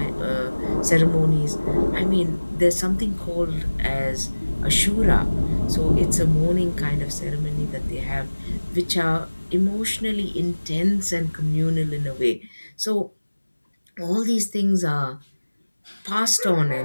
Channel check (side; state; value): both; inverted; correlation -1.00